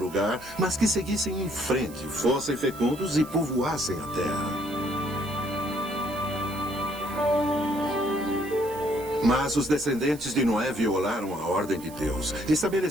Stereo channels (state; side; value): noise; right; hiss, 19 dB below the sound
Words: mas que seguissem em frente, fossem fecundos e povoassem a terra. Mas os descendentes de Noé violaram a ordem de Deus.